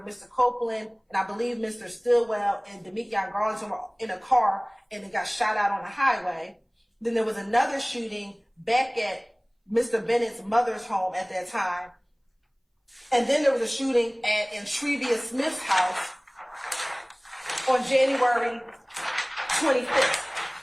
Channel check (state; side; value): identical; both; correlation 1.00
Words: Mr. Copeland and I believe Mr. Stillwell and Demetrius Garlington were in a car and they got shot out on the highway. Then there was another shooting back at Mr. Bennett's mother's home at that time. And then there was a shooting at Intrevia Smith's house on January 25th.